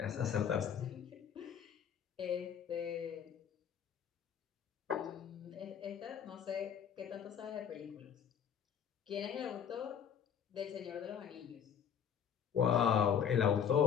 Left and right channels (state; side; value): quieter; right; 8.2 dB